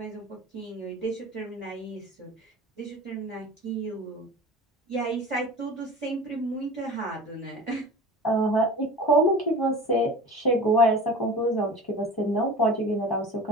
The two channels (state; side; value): normal; both; correlation 0.36